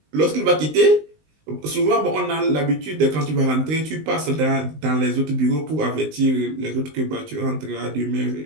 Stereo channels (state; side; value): late; left; 19 ms